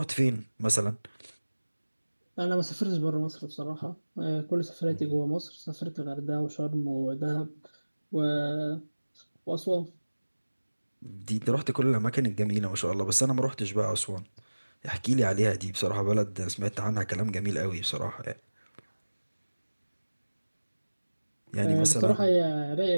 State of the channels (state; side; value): inverted; both; correlation -1.00